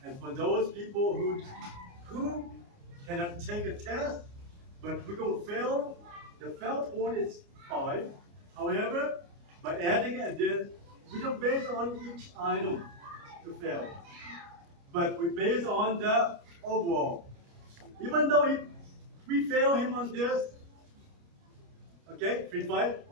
And for those people who cannot take a test, but we're going to fail, the fail point is 5. However, by adding a this, we don't base on each item to fail, but we base on the overall. Even though if we fail him on this, okay, free fight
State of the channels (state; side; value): late; left; 29 ms